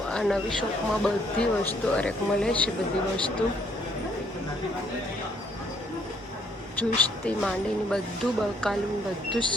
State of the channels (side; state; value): both; normal; correlation 0.67